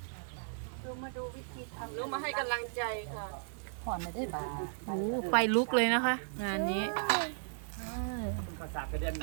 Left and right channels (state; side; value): silent; left; digital silence